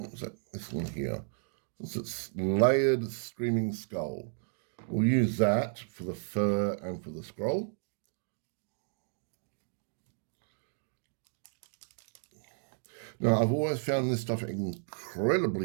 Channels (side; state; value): left; silent; digital silence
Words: was that? This one here. It's layered screaming skull. We'll use that for the fur and for the scroll. Now, I've always found this stuff